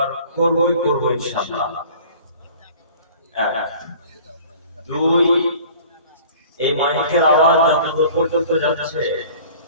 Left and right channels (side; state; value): both; inverted; correlation -0.47